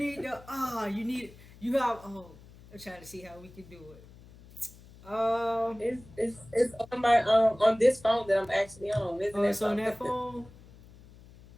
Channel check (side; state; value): left; noise; hum, 22 dB below the sound